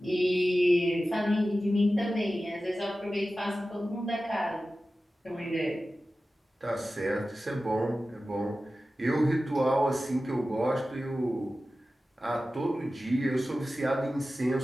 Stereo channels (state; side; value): normal; both; correlation 0.95